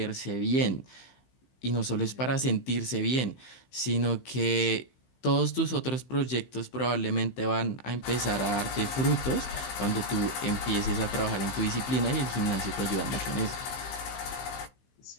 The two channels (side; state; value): right; late; 15 ms